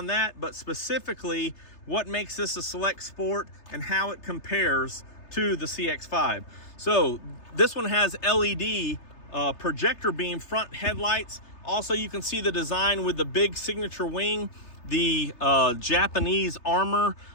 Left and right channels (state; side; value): late; right; 3.3 ms